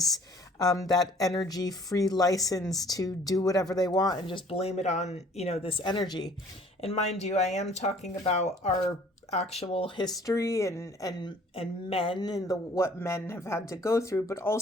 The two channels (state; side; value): normal; both; correlation 0.55